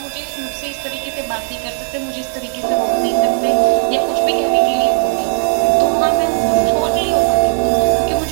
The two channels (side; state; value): left; silent; 63 dB below the other